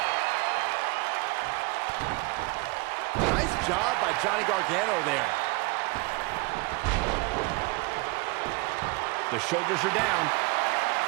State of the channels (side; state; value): left; quieter; 25.7 dB